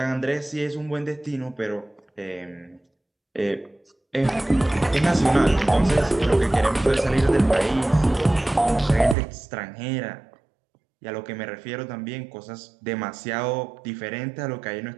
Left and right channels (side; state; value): left; drops out; at 9.2 s